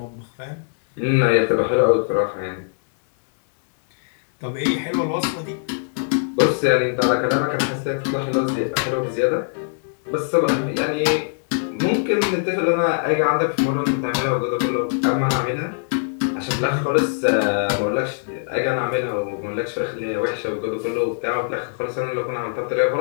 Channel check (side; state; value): right; silent; digital silence